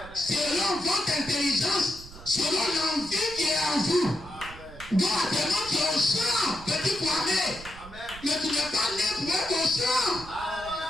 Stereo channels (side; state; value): right; noise; rumble, 17 dB below the sound